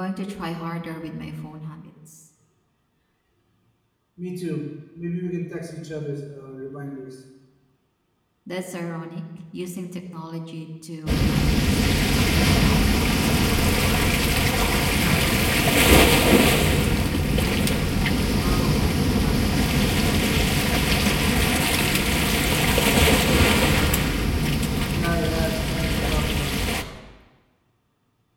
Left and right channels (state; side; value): identical; both; correlation 1.00